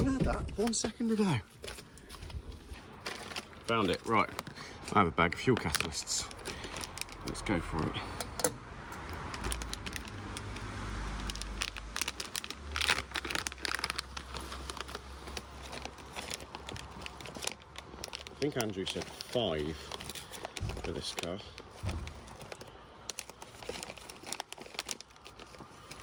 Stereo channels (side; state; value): both; identical; correlation 1.00